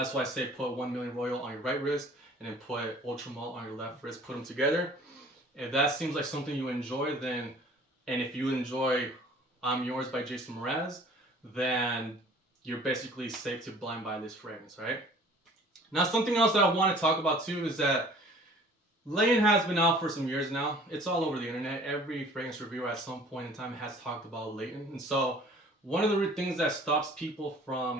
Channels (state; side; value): normal; both; correlation 0.50